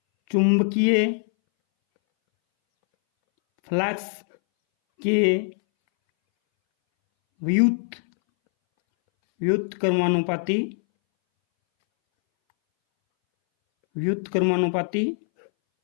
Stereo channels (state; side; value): silent; right; 62 dB below the other